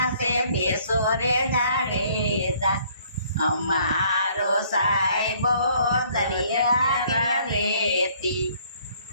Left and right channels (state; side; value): inverted; both; correlation -0.61